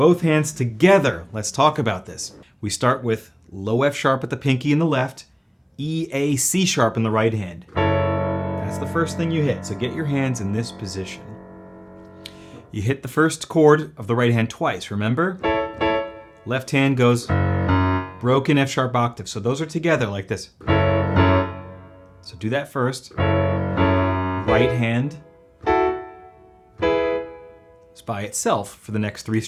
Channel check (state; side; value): identical; both; correlation 1.00